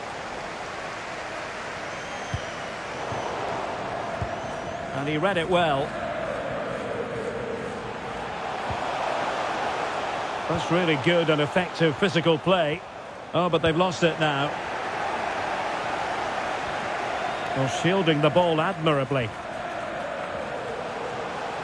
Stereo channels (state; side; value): identical; both; correlation 1.00